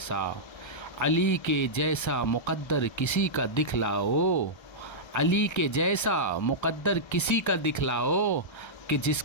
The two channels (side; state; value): right; late; 1.3 ms